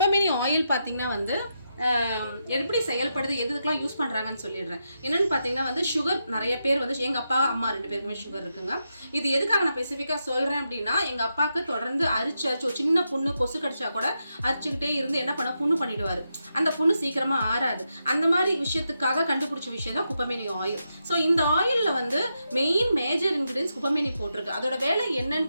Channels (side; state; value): both; inverted; correlation -0.85